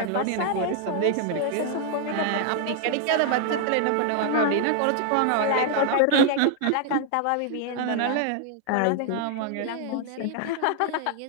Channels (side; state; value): both; different; correlation 0.00